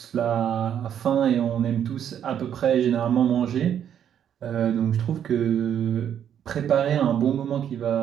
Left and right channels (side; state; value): left; quieter; 9.3 dB